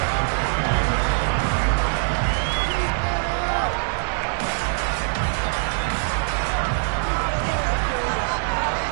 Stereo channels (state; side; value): silent; left; 63 dB below the other